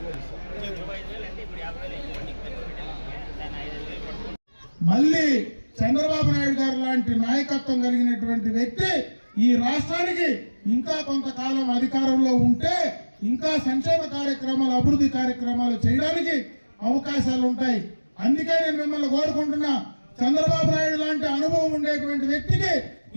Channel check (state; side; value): inverted; both; correlation -1.00